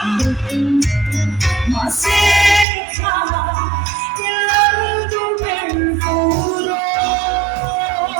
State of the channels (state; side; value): drops out; left; at 2.7 s